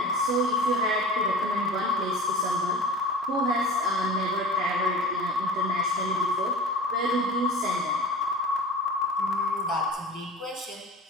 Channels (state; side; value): normal; both; correlation 0.37